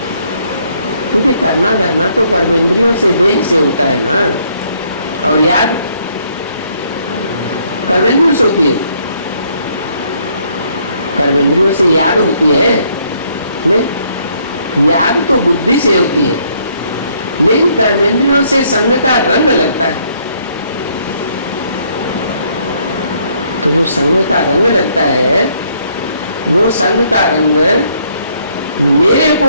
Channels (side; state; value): both; inverted; correlation -0.68